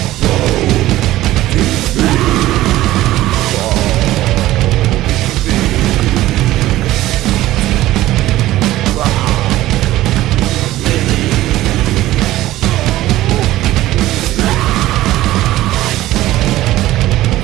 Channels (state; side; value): quieter; left; 15.7 dB